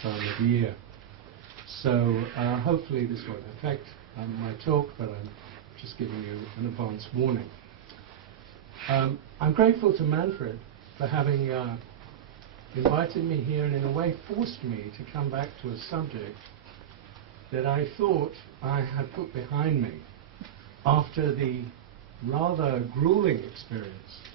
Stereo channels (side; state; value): left; quieter; 10.1 dB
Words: time of year. So hopefully this won't affect my talk, but I'm just giving you an advance warning. I'm grateful to Manfred for having invited me here and in a way forced me to come back to a subject that I thought I had put behind me after the rather grueling experience